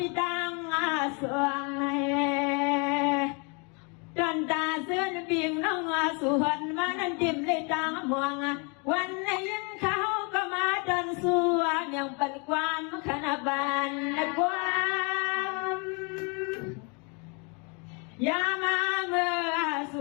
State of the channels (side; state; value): right; quieter; 33.6 dB